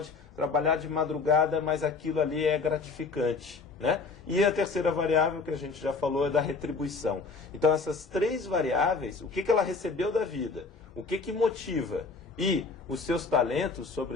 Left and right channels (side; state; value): right; quieter; 4.3 dB